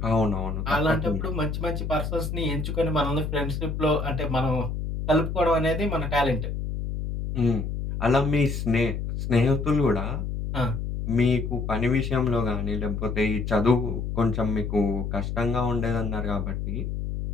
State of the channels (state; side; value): noise; left; hum, 3 dB below the sound